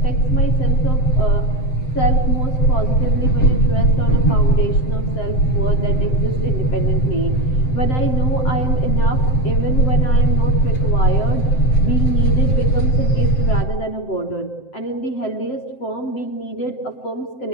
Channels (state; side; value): late; right; 7.7 ms